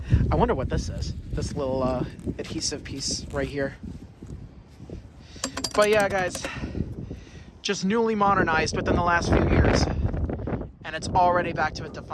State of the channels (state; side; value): identical; both; correlation 1.00